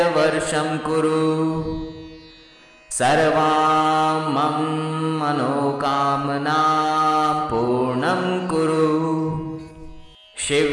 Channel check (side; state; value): both; identical; correlation 1.00